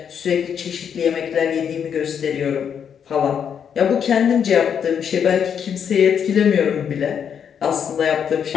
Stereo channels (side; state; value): right; quieter; 7.9 dB